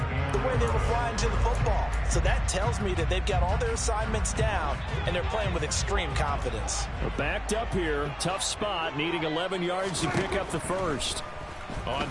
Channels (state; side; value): identical; both; correlation 1.00